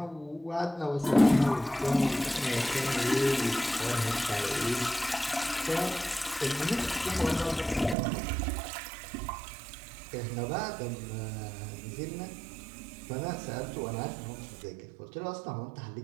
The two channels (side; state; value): left; drops out; at 8.0 s